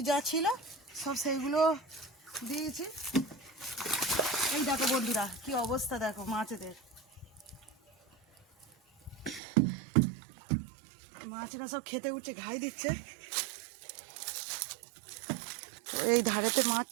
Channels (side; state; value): left; drops out; at 9.4 s